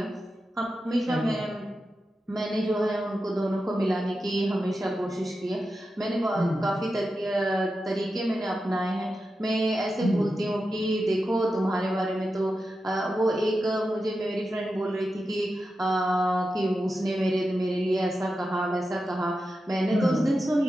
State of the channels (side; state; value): both; normal; correlation 0.90